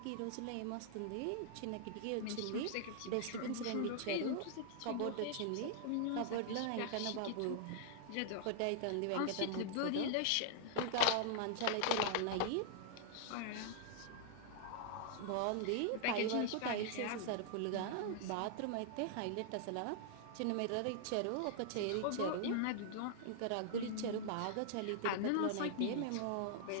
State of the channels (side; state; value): both; different; correlation -0.01